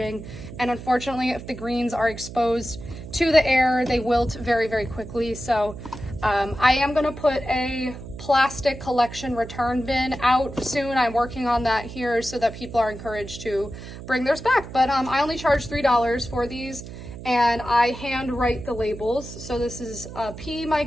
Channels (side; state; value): right; noise; hum, 12 dB below the sound